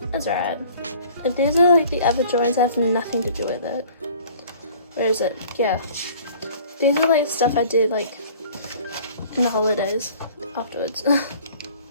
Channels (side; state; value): both; inverted; correlation -0.50